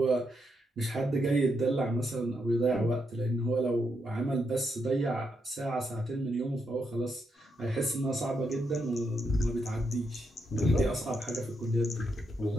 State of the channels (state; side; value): normal; both; correlation 0.80